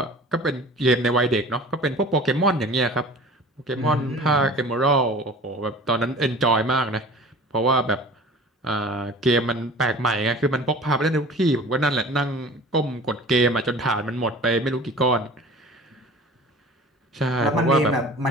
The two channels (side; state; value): both; normal; correlation 0.42